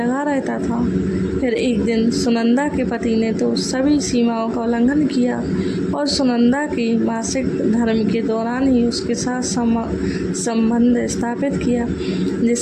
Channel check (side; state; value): both; identical; correlation 1.00